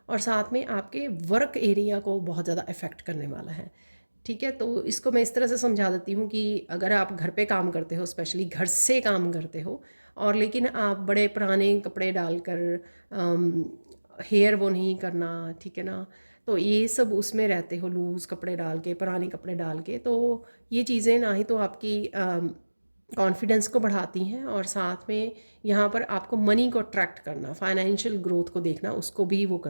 और साथ में आपके वर्क एरिया को बहुत ज़्यादा इफ़ेक्ट करने वाला है, ठीक है। तो इसको मैं इस तरह से समझा देती हूँ कि अगर आप घर पे काम करते हो, स्पेशली घर से काम करते हो, और लेकिन आप बड़े पुराने कपड़े डालकर, हेयर वो नहीं करना, ठीक है ना, तो ये सब उसमें रहते हो, लूज़ कपड़े डाल के, पुराने कपड़े डाल के, तो ये चीज़ें ना ही तो आपकी कॉन्फिडेंस को बढ़ाती हैं, और साथ में यहाँ पर आपको मनी को अट्रैक्ट करना, फाइनेंशियल ग्रोथ को देखना, उसको भी वो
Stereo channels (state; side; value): inverted; both; correlation -1.00